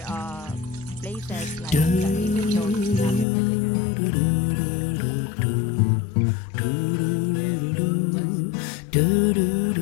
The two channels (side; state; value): right; drops out; at 3.2 s